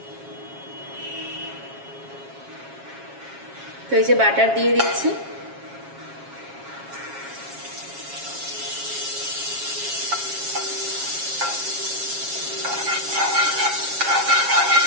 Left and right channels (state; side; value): late; left; 7.3 ms